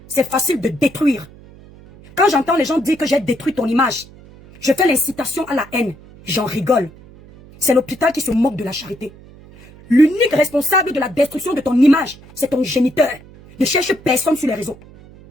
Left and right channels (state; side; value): noise; right; hum, 22 dB below the sound